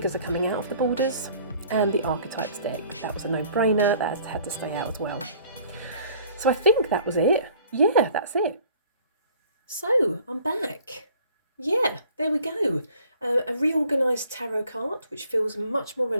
are coming out of the borders. And the Archetypes deck. That was a no-brainer. That had to stay out as well. So I think that was it. Yeah, that's it. So I'm back. Yeah, there we go. A reorganised tarot card, which feels much more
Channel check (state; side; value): inverted; both; correlation -0.54